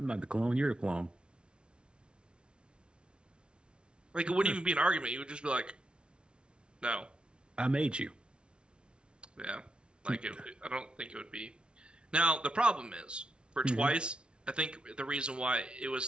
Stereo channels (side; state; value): left; late; 0.057 ms